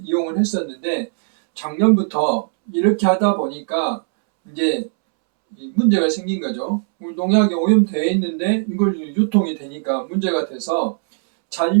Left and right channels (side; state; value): left; silent; 66 dB below the other